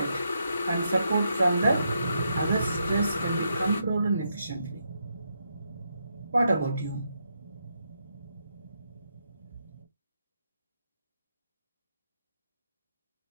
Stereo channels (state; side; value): inverted; both; correlation -0.80